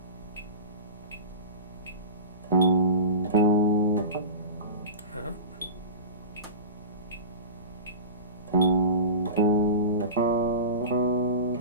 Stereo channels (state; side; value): inverted; both; correlation -0.30